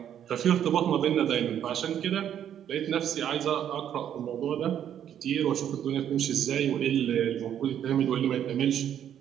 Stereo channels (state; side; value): quieter; left; 9.9 dB